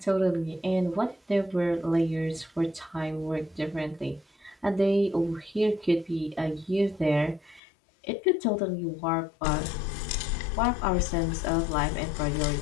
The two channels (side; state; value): right; drops out; at 7.6 s